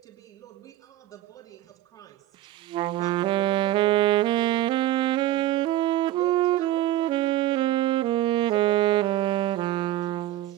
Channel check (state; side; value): quieter; left; 14.6 dB